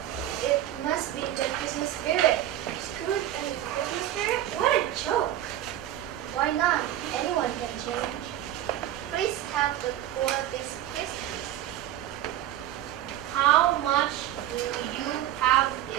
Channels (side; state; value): left; quieter; 12.7 dB